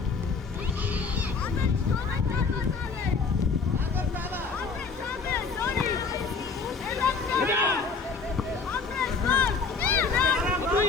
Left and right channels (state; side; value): quieter; right; 4.8 dB